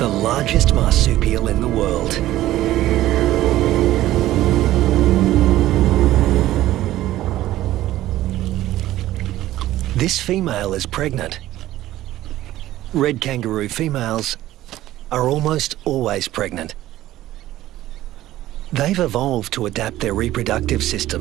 largest marsupial in the world. This female is pregnant. Red kangaroo females are almost always pregnant. They've evolved to adapt their reproductive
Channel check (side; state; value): left; quieter; 14.8 dB